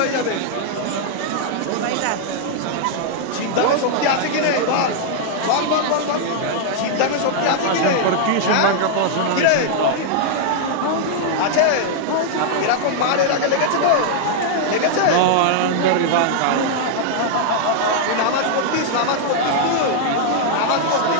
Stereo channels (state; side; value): different; both; correlation -0.01